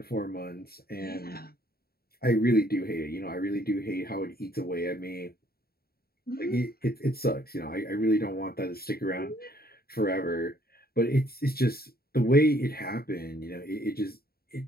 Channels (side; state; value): right; late; 0.45 ms